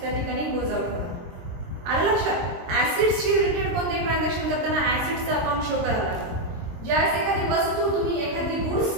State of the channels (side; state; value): left; late; 23 ms